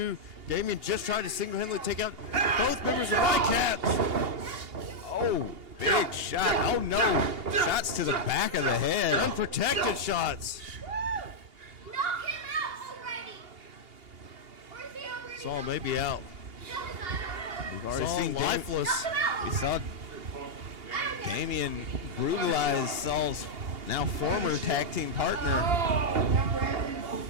Damian just tried to single-handedly take out both members of White Cats. Oh, big shot. Oh, no. Shots to the back of the head. Unprotected shots. Knock him out already. Where's he over? Saul may be out. We've already Saul seen lifeless. We saw Damian brutalize Saul's now former tag team partner,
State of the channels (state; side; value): late; left; 2.8 ms